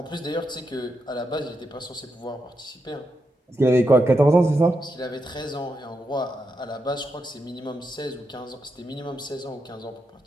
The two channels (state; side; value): normal; both; correlation 0.84